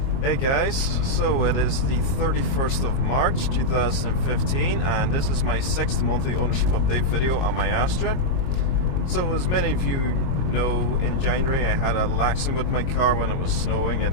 guys, so it is the 31st of March 2015 and this is my 6th monthly ownership update video on my Astra. So as many of you know, in January I had a accident with my car when it was snowing.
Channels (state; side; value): late; right; 22 ms